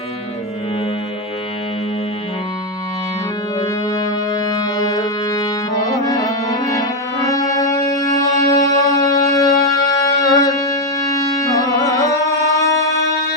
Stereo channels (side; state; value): both; normal; correlation 0.05